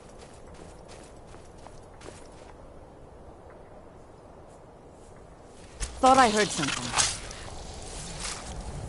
Thought I heard something.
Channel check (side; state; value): both; identical; correlation 1.00